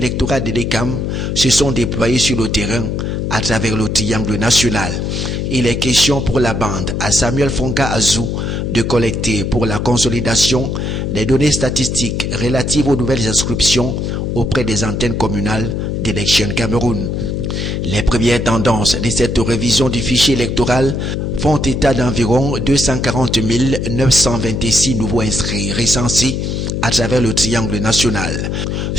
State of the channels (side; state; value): left; noise; hum, 2 dB below the sound